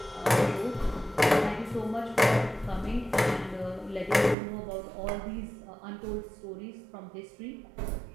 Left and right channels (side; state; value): left; drops out; at 4.4 s